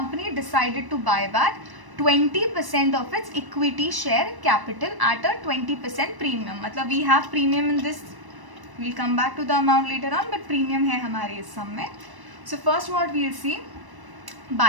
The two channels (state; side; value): late; left; 1.1 ms